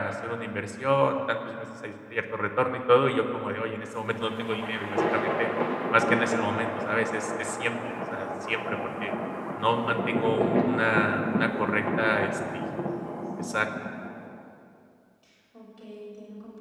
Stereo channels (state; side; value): identical; both; correlation 1.00